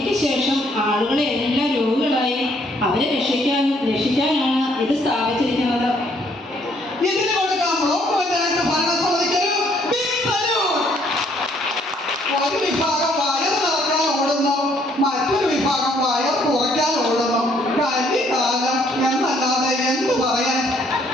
ശേഷം ആളുകളെ എല്ലാം രോഗികളായി അവരെ രക്ഷിക്കാനാണ് ഇത് സ്ഥാപിച്ചിരിക്കുന്നത്. ഇതിന് കൊടുക്കാം ബ്ലോക്ക് പഞ്ചായത്ത് ഭരണസമിതിക്കൊരു ബിഗ് സല്യൂട്ട്. ഒരു വിഭാഗം വയർ നിറക്കാൻ ഓടുന്നു, മറ്റൊരു വിഭാഗം വയർ കുറയ്ക്കാൻ ഓടുന്നു. കലികാലം എന്നല്ലാതെ എന്ത് പറയാൻ?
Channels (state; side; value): normal; both; correlation 0.66